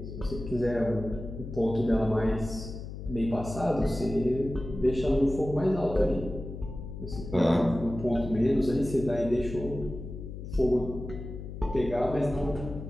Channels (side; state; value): left; noise; hum, 9 dB below the sound